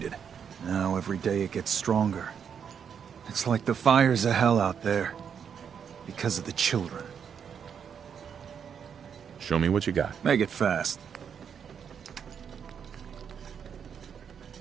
Now every day it gets stronger. It's like the fires of hell out there. Because of the children. Show me what you got. Make it fast.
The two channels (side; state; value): left; quieter; 7.5 dB